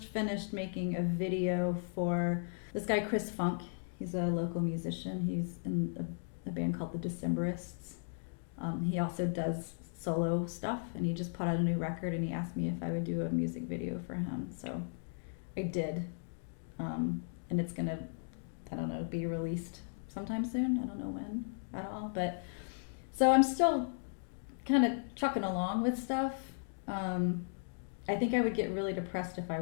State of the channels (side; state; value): right; silent; digital silence